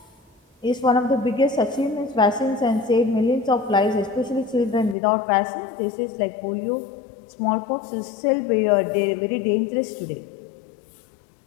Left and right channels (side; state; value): right; drops out; at 5.0 s